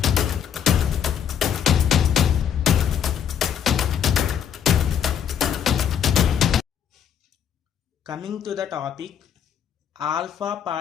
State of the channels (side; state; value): right; quieter; 8.6 dB